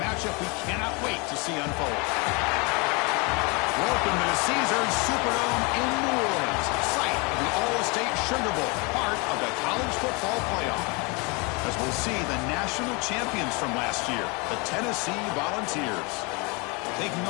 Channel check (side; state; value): right; quieter; 29.5 dB